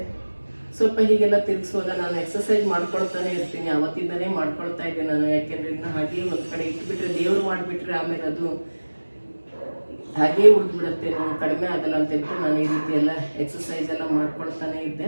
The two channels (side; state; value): both; inverted; correlation -1.00